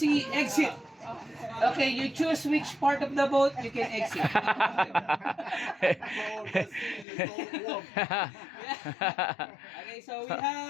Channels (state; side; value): drops out; right; at 7.1 s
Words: exit. Okay, you choose which part of the boat you can exit. Okay, so we